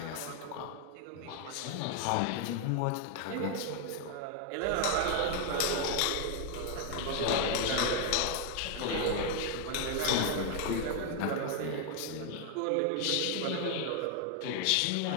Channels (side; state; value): both; different; correlation 0.01